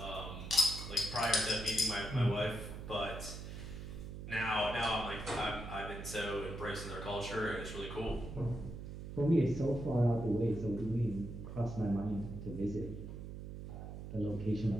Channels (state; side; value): noise; right; hum, 9 dB below the sound